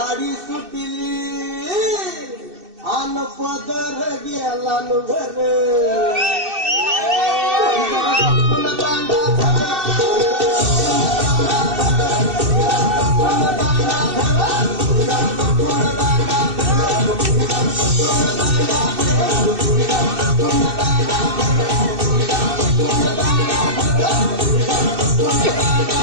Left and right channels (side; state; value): left; late; 2.6 ms